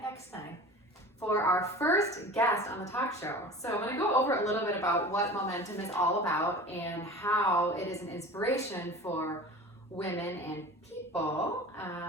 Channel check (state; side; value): normal; both; correlation 0.38